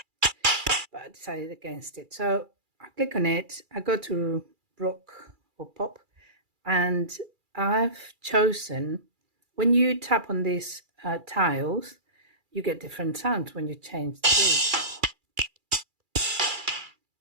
I decided against it. So I click on it, I go to rock or pop, and I've chosen, when you tap on these tiles, you get different sounds when you change the grid.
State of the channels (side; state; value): left; late; 2.3 ms